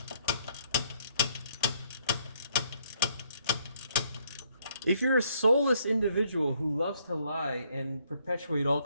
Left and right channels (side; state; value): both; inverted; correlation -0.69